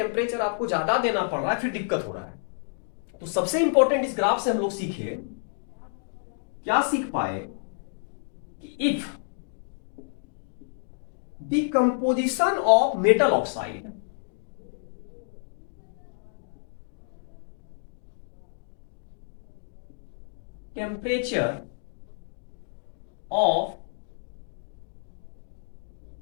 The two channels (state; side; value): silent; right; digital silence